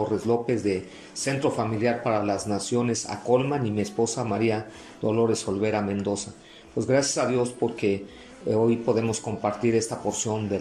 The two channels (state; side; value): identical; both; correlation 1.00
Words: López de Centro Familiar para las Naciones Acolman y mi esposa María Dolores Olvera Mendoza. Pues gracias a Dios porque hoy podemos compartir esta porción de